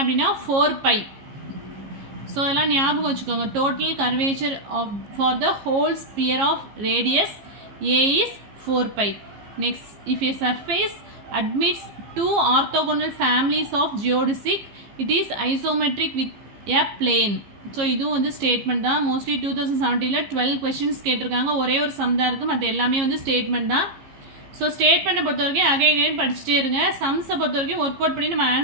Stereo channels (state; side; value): late; left; 15 ms